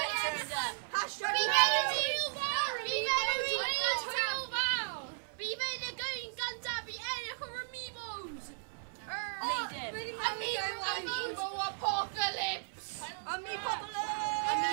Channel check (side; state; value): left; silent; 54 dB below the other